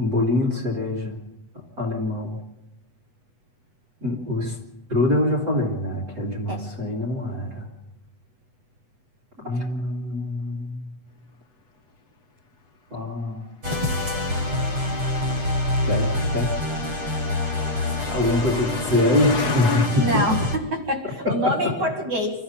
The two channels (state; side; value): late; left; 8.1 ms